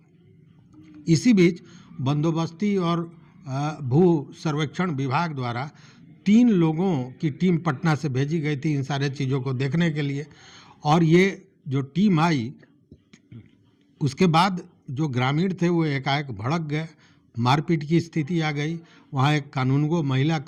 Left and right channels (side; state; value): both; identical; correlation 1.00